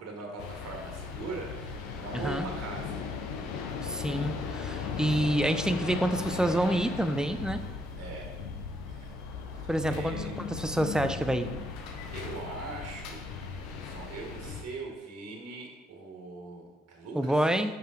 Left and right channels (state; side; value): normal; both; correlation 0.74